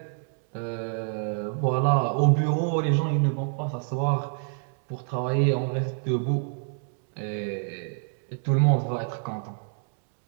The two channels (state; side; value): silent; left; 60 dB below the other